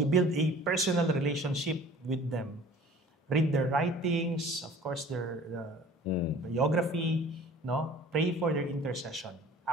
build a personal relationship with them. Read their writings, of course their biography, no? Pray for their intercession,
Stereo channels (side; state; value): both; normal; correlation 0.47